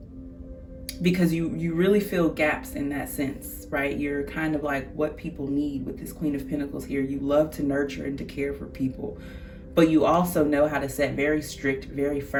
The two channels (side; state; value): both; identical; correlation 1.00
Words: Because you really fill gaps in that sense, right? You're kind of like what people need with this Queen of Pentacles here. You love to nurture and to care for people, but you also know how to set very strict, very